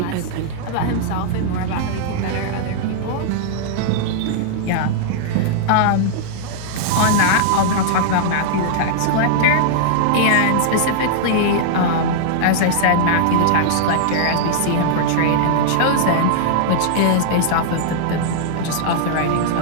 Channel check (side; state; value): both; different; correlation -0.01